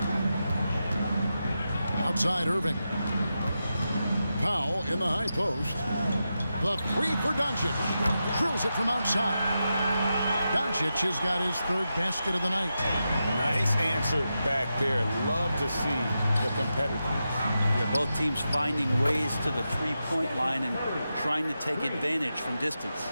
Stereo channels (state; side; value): inverted; both; correlation -0.89